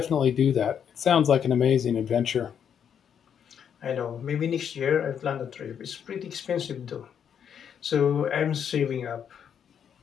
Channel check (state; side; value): quieter; right; 8.2 dB